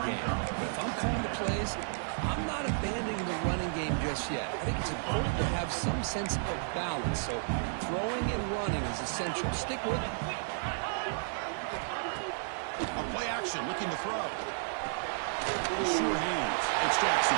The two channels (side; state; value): left; silent; 56 dB below the other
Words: game. But if I'm calling the plays, I'm not abandoning the running game just yet. I think it's important to have some sense of balance. So throwing and running is essential. Stick with it. A play action, looking to throw. Sure hands. It's Jackson.